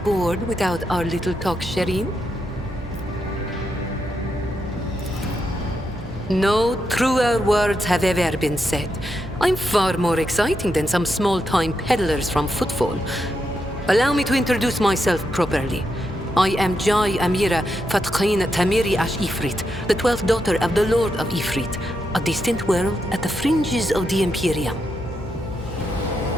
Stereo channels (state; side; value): normal; both; correlation 0.83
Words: without our little talk, Shireen? No truer words have ever been said. I'm far more exciting than some small-time peddlers from Footfall. Allow me to introduce myself properly. I am Jai Amira Fatqin Tamiri Ash Ifrit, the 12th daughter of the Lord of Ifrit, a distant world at the fringes of the Imperium.